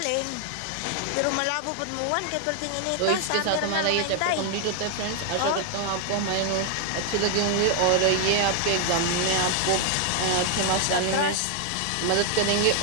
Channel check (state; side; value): different; both; correlation 0.00